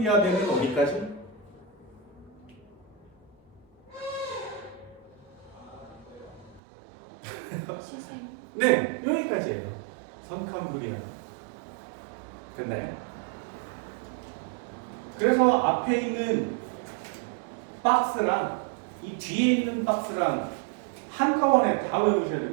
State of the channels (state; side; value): drops out; left; at 6.6 s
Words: 어디까지? 네, 여기까지예요. 선캄브리아. 됐나요? 그래서 앞에 있는 박스랑 이 뒤에 있는 박스랑 한꺼번에 다 외우셔야